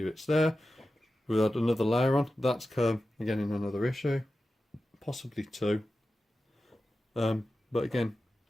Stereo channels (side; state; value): both; normal; correlation 0.93